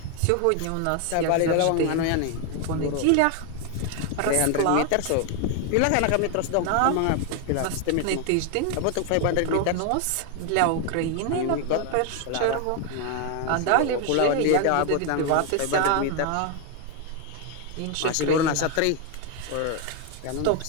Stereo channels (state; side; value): different; both; correlation 0.01